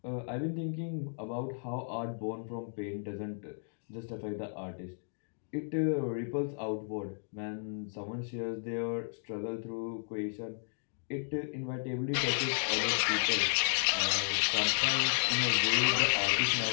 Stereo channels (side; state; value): right; silent; digital silence